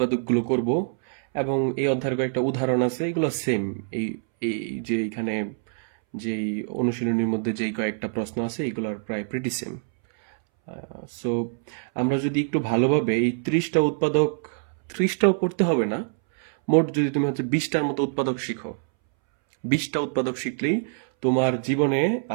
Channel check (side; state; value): left; silent; 61 dB below the other